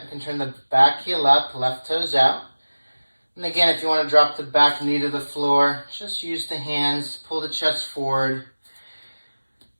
You can turn the back heel up, left toes out. And again, if you want to drop the back knee to the floor, just use the hands, pull the chest forward.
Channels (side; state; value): both; inverted; correlation -1.00